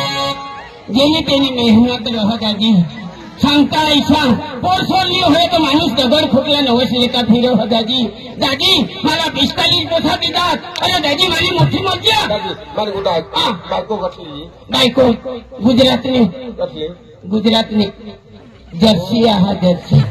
જેની તેની મહેનત રહો દાદી सांगता ऐसा पोर सोडली होय तो माणूस दगड फुटला नवस लेका फिरो हो दाजी दाजी मला 45 पोसा देतात अरे दाजी माझी मोठी मज्जा मला कुठं आहे बायको कसली बायको गुजरातनी कसली गुजरातनी जर्सी आहा जर्सी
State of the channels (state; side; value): identical; both; correlation 1.00